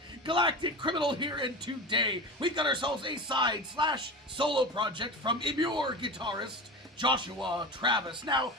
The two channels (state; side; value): normal; both; correlation 0.29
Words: Galactic Criminal here, and today we've got ourselves a side/solo project from EMMURE guitarist Joshua Travis. Now,